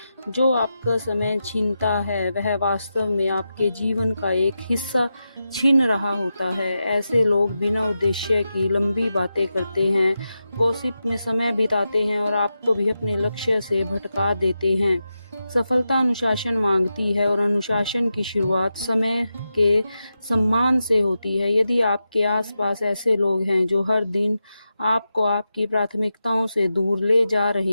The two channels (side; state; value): both; inverted; correlation -0.90